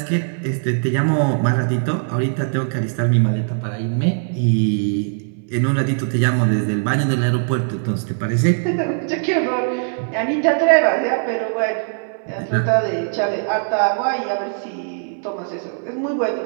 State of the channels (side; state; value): left; silent; 66 dB below the other